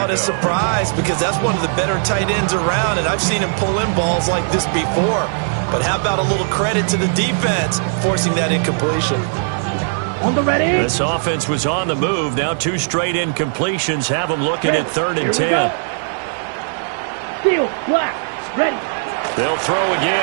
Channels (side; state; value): left; silent; digital silence